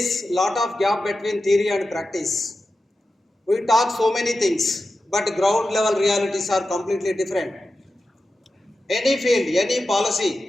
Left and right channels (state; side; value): normal; both; correlation 0.92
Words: lot of gap between theory and practice. We talk so many things, but ground level realities are completely different. Any field, any